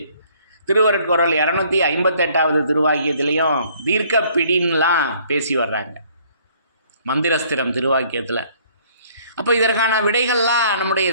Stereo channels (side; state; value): both; inverted; correlation -0.60